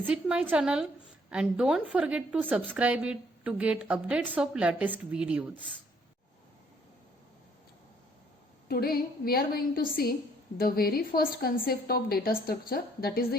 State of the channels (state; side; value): normal; both; correlation 0.64